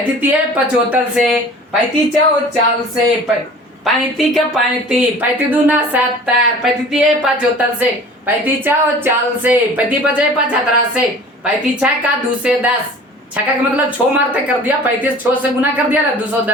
3 75 से, 35 4 40 से, 35 का 35, 35 दूना 70, 35 3 75 से, 35 4 40 से, 35 5 75 से, 35 6 का 2 से 10, छक्का का मतलब 6 मारते कर दिया, 35 6 से गुना कर दिया ना,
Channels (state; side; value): normal; both; correlation 0.44